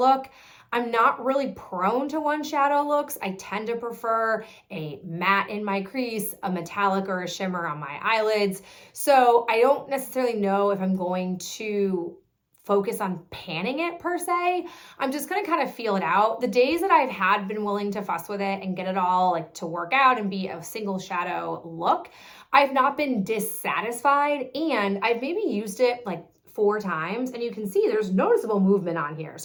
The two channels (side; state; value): both; identical; correlation 1.00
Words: I'm not really prone to one shadow looks. I tend to prefer a matte in my crease, a metallic or a shimmer on my eyelids. So I don't necessarily know if I'm going to focus on panning it per se. I'm just gonna kind of feel it out. The days that I've had been willing to fuss with it and get it all like to work out and be a single shadow look, I've not been dissatisfied, and I've maybe used it like 4 times, and you can see there's noticeable movement on here.